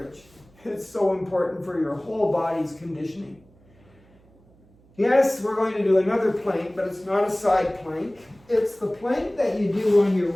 It's so important for your whole body's conditioning. Yes, we're going to do another plank, but it's not a side plank. It's the plank that you do on your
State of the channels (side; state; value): right; noise; hum, 29 dB below the sound